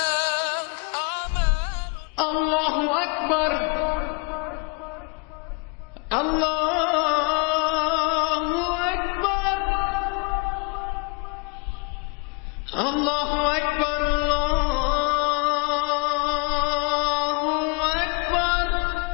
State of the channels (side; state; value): right; quieter; 32.4 dB